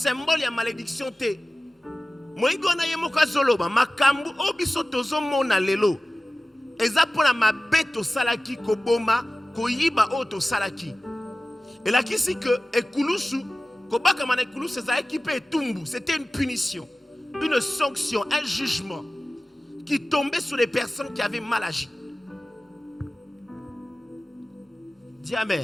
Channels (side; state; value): both; normal; correlation 0.96